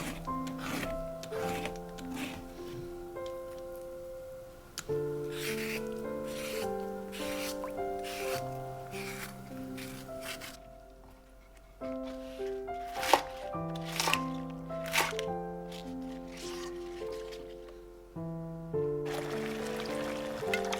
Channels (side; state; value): both; identical; correlation 1.00